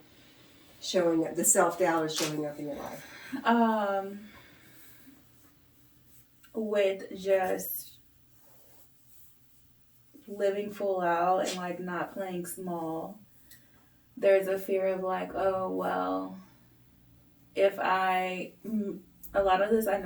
showing up, the self-doubt is showing up in your life? With just living full out and like not playing small, there's a fear of like, oh well, if I A lot of this I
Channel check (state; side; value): identical; both; correlation 1.00